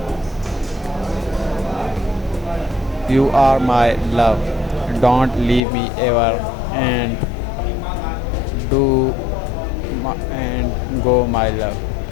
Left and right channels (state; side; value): drops out; right; at 5.6 s